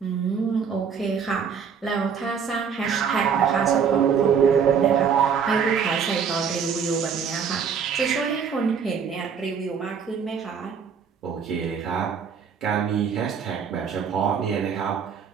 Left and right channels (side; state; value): left; quieter; 6.8 dB